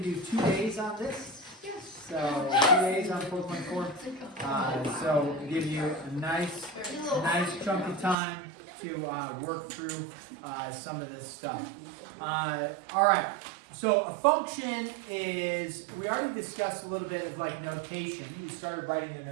to do 2 days on this. So 2 days on 4.4. So give you a nice chunk of time to work through some of this stuff. All right. So a function is, we already discussed a little bit of like notation. We started writing the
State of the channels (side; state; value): left; drops out; at 8.2 s